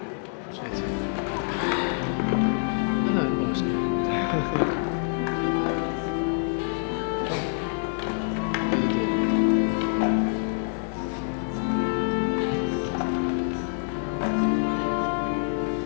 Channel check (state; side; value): silent; right; 61 dB below the other